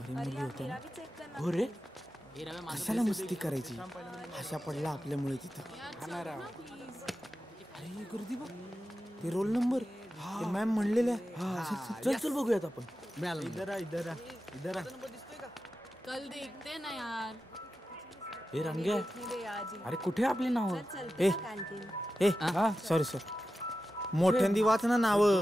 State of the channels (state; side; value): normal; both; correlation 0.92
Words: मुली होत्या ना. हो रे. कशाला मस्ती करायची? अशा पडला आपल्यामुळे तिथं. अरे गर्दी बघ. ते रोल नंबर ते मॅम म्हणलेल्या. चल चल बघूयात आपण. इधर कल देखते ना यार. हे रंग्या, अरे कुठे आपली नाव? ए सॉरी सर. मोठ्यांदी वाच ना नाव.